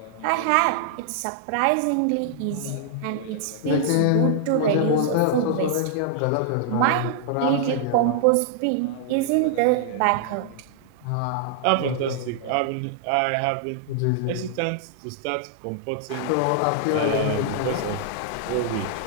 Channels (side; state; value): both; different; correlation -0.01